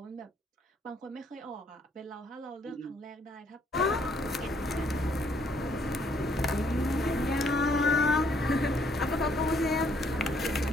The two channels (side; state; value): both; normal; correlation 0.67